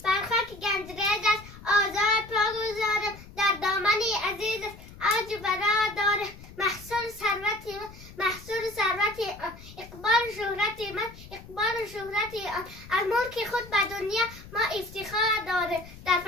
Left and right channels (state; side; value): noise; left; rumble, 18 dB below the sound